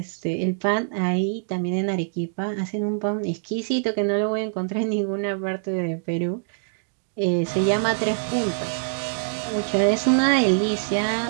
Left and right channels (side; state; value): left; silent; digital silence